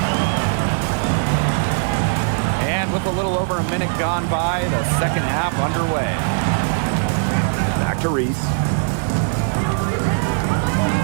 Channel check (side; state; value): left; silent; digital silence